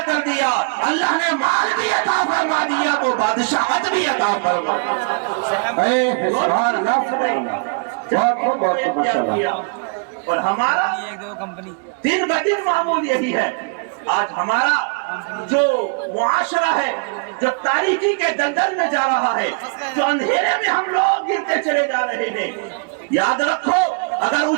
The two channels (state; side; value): quieter; left; 36.8 dB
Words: کر دیا، اللہ نے مال بھی عطا فرما دیا، تو بادشاہت بھی عطا فرما سبحان اللہ سبحان اللہ، بہت ماشاءاللہ۔ اور ہمارا دن بدن معمول یہی ہے۔ آج ہمارا جو معاشرہ ہے، جو تاریکی کے دلدل میں جا رہا ہے، جو اندھیرے میں ہم لوگ گرتے چلے جا رہے ہیں، یاد رکھو اگر